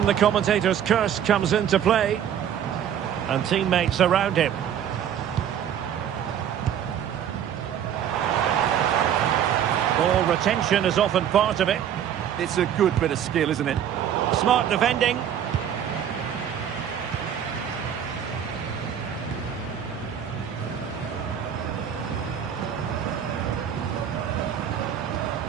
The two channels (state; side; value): quieter; left; 9.4 dB